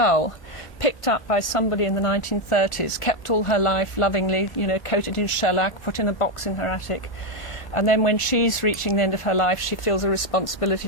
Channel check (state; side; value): late; right; 1.1 ms